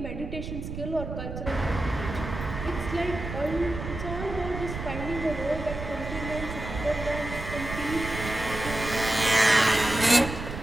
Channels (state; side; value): noise; right; rumble, 7 dB below the sound